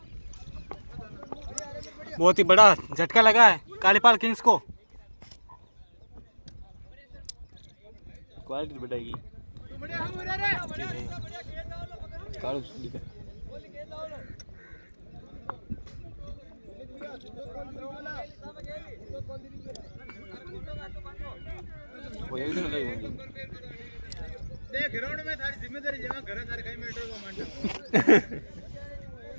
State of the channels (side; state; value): both; inverted; correlation -1.00